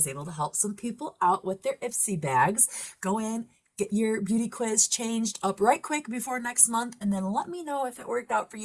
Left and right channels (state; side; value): identical; both; correlation 1.00